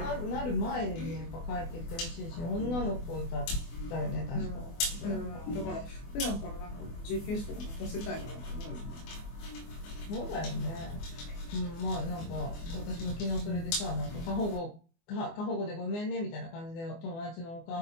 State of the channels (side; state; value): right; late; 24 ms